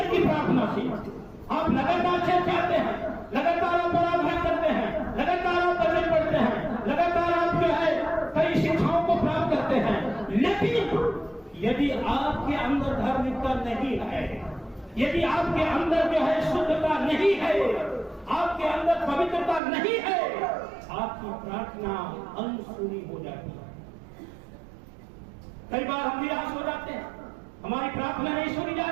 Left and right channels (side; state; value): left; drops out; at 19.6 s